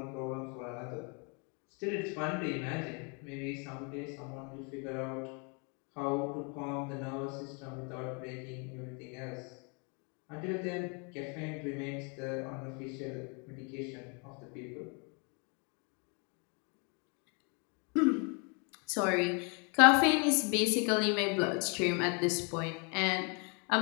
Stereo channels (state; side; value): quieter; right; 34.9 dB